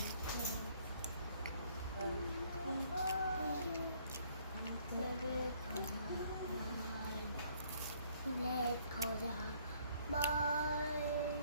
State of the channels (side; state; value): both; inverted; correlation -0.64